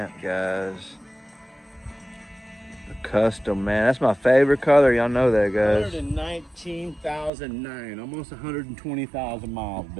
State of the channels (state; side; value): drops out; left; at 7.3 s